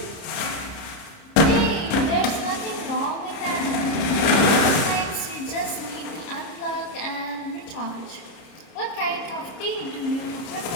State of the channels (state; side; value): late; right; 30 ms